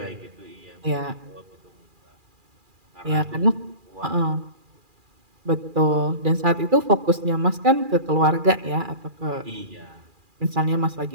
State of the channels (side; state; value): left; late; 2.4 ms